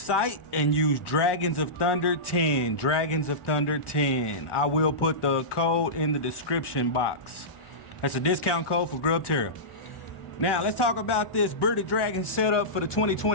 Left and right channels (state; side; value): late; right; 1.2 ms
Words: and use Dragons of Thunder 10. Dragons of Thunder 10. I will put the code in the description box. That's a discount code for Grubterra. Now, let's talk about this Bearded Dragon setup for the